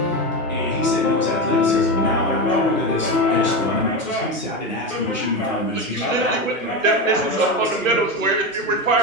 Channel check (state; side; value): normal; both; correlation 0.17